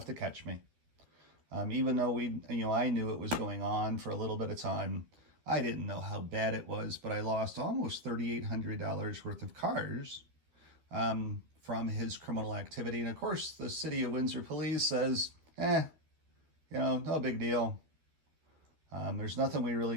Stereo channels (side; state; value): left; late; 12 ms